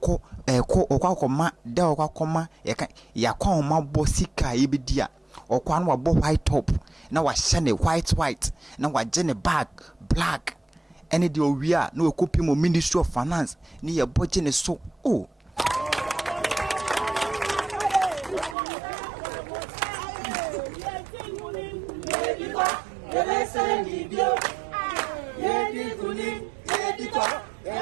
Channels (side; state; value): left; drops out; at 18.6 s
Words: da okwa ya kwa ma bo sika ye bidia okwa no wabo white top na wa shane white na wa jene black any de owia na okopi mo ministry of finance ni ye boje ne so